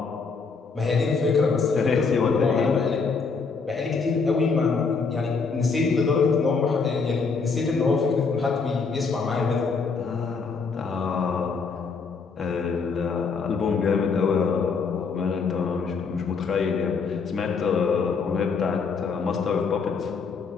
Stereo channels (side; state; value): right; quieter; 4.9 dB